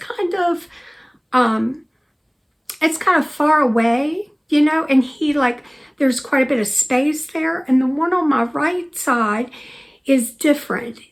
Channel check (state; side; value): identical; both; correlation 1.00